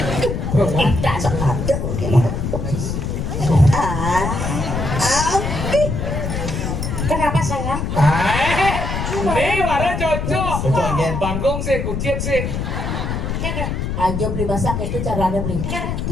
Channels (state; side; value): noise; left; rumble, 3 dB below the sound